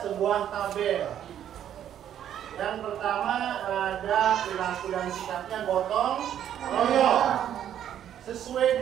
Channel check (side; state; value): left; quieter; 10.3 dB